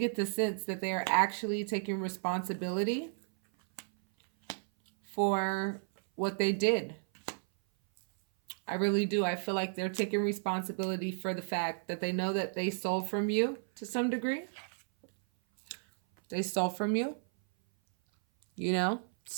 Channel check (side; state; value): left; silent; 56 dB below the other